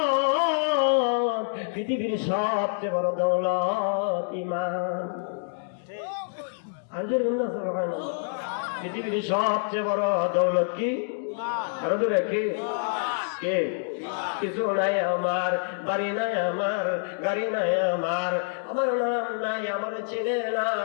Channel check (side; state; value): right; silent; digital silence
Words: পৃথিবীর সবচেয়ে বড় দৌলত ঈমান। পৃথিবীর সবচেয়ে বড় দৌলত কি? আরো দূরে কি? কিছু নাই আমার, বাড়ি নাই আমার, গাড়ি নাই আমার নাম নাই, আমার চেনে না,